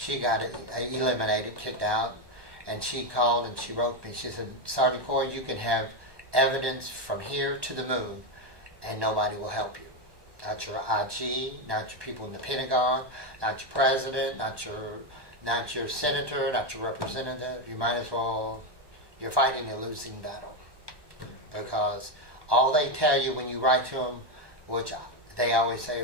eliminated, kicked out, and she called and she wrote me. She said, Sergeant Corey, you can have evidence from here to the moon, and nobody will help you. Not your IG, not your people in the Pentagon, not your president, not your senator, not your representative. You might as well, you're fighting a losing battle. Because all they tell you when you write to them, which they always say,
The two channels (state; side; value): late; left; 1.1 ms